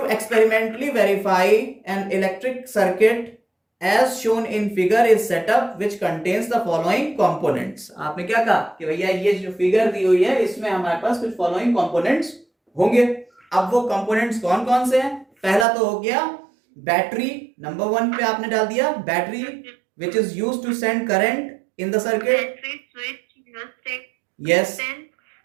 experimentally verify an electric circuit as shown in figure is set up which contains the following components। आपने क्या कहा कि भैया ये जो फिगर दी हुई है इसमें हमारे पास कुछ फॉलोइंग कंपोनेंट्स होंगे। अब वो कंपोनेंट्स कौन कौन से हैं? पहला तो हो गया बैटरी, नंबर 1 पे आपने डाल दिया battery which is used to send current in the circuit। Battery, switch, rheostat, yes,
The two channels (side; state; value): left; drops out; at 15.7 s